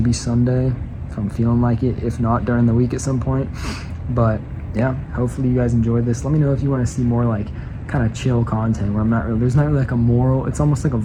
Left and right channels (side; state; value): both; identical; correlation 1.00